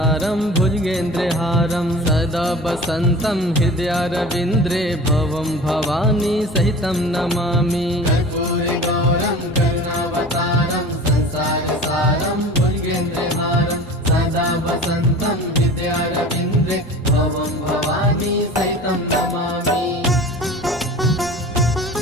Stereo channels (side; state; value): both; normal; correlation 0.38